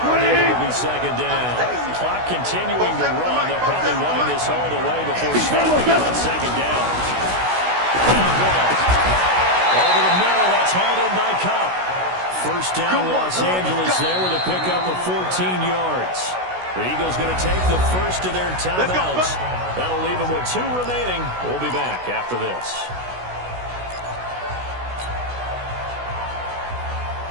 and it will be 2nd down. Clock continuing to run. They'll probably wind this all the way before snapping on 2nd down. Over the middle, that's hauled in by Cup. First down, Los Angeles there with a pickup of 14 yards. The Eagles going to take the first of their timeouts. That'll leave them with 2 remaining. We'll be back after this.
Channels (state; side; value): late; left; 16 ms